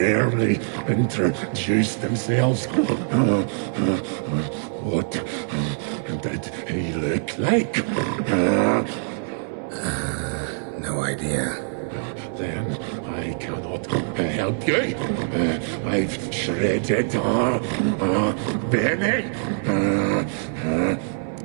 introduce themselves. What did he look like? No idea. Then I cannot help you. I've shredded Benny.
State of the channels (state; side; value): silent; left; 59 dB below the other